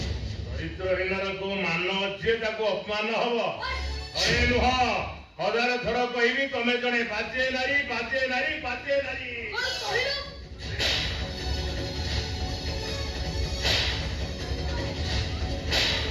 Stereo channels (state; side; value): identical; both; correlation 1.00